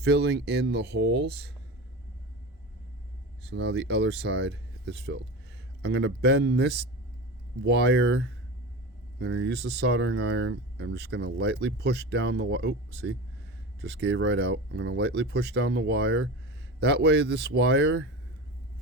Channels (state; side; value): normal; both; correlation 0.28